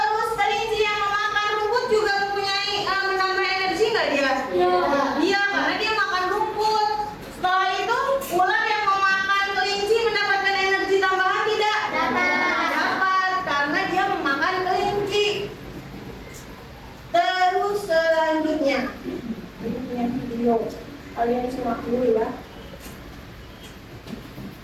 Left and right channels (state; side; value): identical; both; correlation 1.00